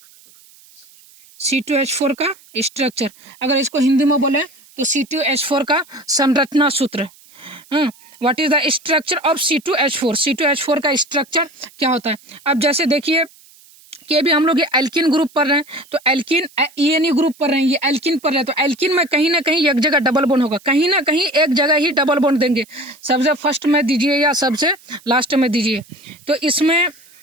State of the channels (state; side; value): noise; right; hiss, 26 dB below the sound